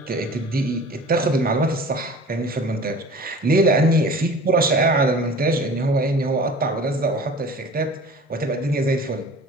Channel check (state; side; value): normal; both; correlation 0.42